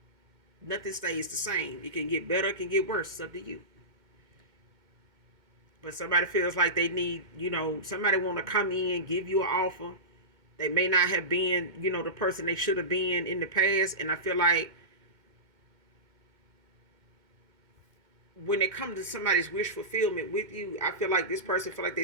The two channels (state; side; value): late; left; 2.2 ms